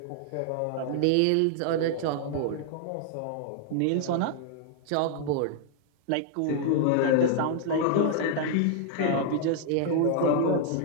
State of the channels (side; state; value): both; different; correlation 0.00